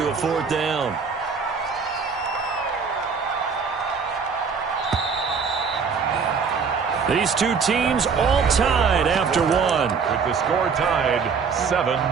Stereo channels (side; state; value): left; quieter; 5.7 dB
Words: a fourth down. These two teams all tied after one. With the score tied